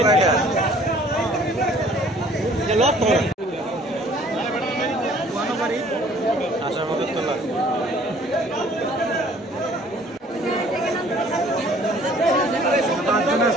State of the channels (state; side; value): normal; both; correlation 0.56